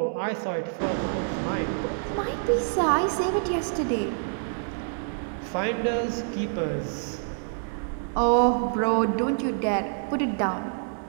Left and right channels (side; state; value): left; silent; digital silence